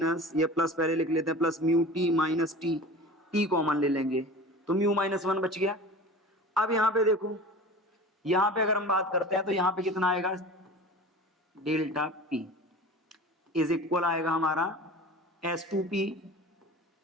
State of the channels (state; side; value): normal; both; correlation 0.37